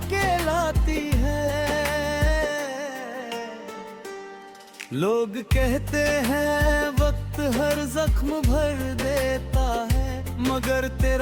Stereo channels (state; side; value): identical; both; correlation 1.00